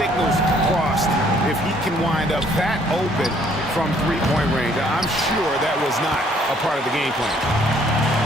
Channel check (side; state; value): both; normal; correlation 0.63